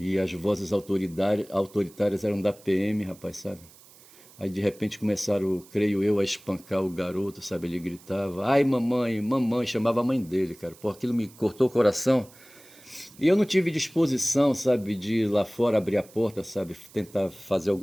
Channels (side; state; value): right; noise; hiss, 24 dB below the sound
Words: as vozes autoritárias eram da PM, rapaz, sabe? Aí de repente começaram, creio eu, a espancar o garoto, sabe? Ele gritava, ai mamãe, mamãe, chamava a mãe dele, cara. Pô, aquilo me cortou o coração. E eu não tive disposição, sabe, de ir lá fora abrir a porta, sabe? Tentar fazer